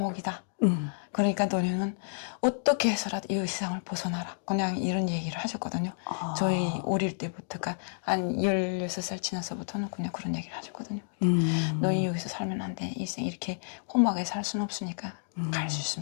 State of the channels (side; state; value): right; silent; digital silence